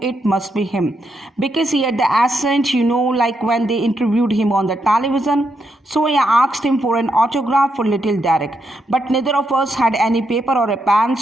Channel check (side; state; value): both; normal; correlation 0.80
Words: it must be him because he had the accent, like when they interviewed him on the television. So I asked him for an autograph for little Derek, but neither of us had any paper or a pen.